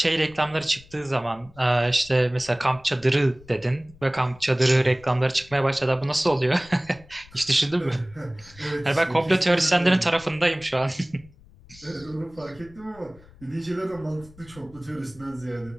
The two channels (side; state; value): left; noise; rumble, 24 dB below the sound